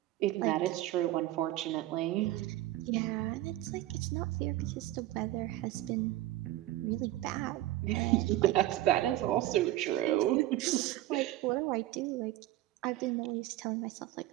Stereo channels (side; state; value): left; quieter; 15.6 dB